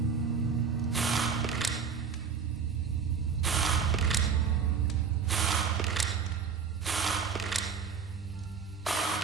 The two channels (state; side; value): quieter; left; 6.2 dB